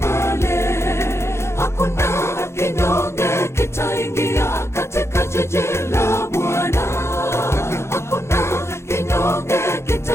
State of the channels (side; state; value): right; late; 0.13 ms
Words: Hakuna kinyonge kitaingia katika jiji la Bwana. Hakuna kinyonge